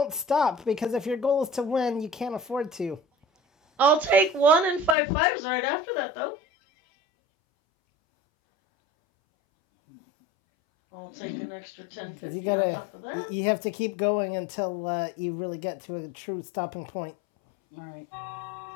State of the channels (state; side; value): drops out; right; at 5.0 s